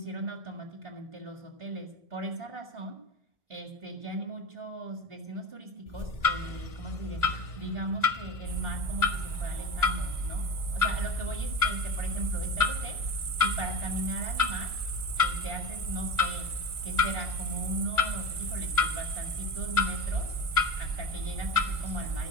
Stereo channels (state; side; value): late; left; 1.4 ms